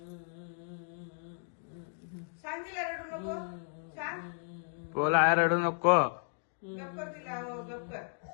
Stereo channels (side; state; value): right; silent; digital silence